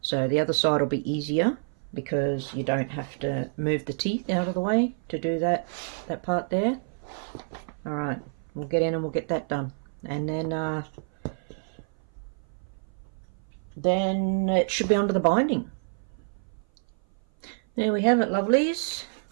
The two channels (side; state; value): left; silent; 57 dB below the other